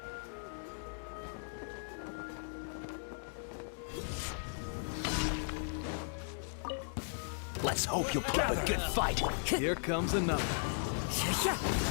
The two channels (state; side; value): silent; right; 53 dB below the other